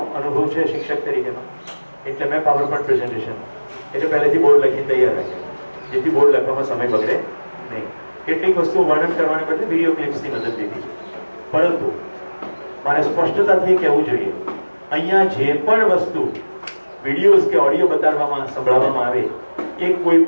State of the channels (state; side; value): inverted; both; correlation -1.00